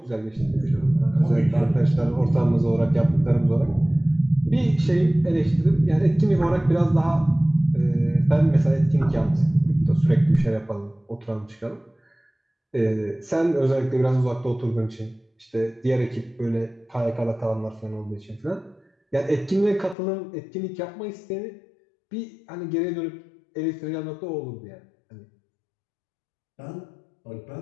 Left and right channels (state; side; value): drops out; right; at 20.0 s